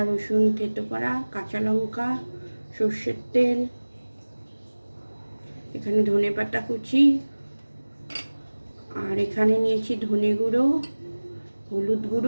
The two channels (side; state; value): both; inverted; correlation -1.00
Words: রসুন থেতো করা, কাঁচা লঙ্কা, সর্ষের তেল, এখানে ধনেপাতা কুচি, আর এখানে নিয়েছি ধনে গুঁড়ো, হলুদ